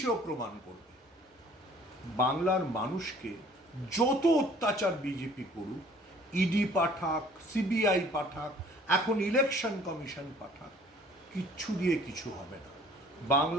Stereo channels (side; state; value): both; normal; correlation 0.54